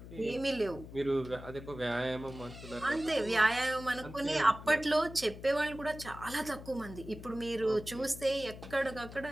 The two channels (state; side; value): noise; left; hum, 14 dB below the sound